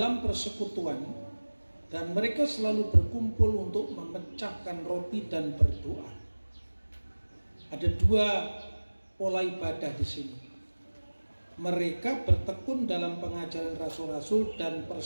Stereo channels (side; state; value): both; inverted; correlation -1.00